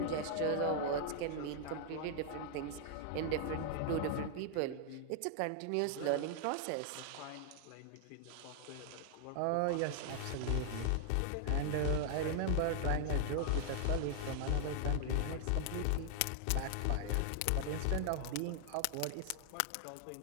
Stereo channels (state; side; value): different; both; correlation 0.00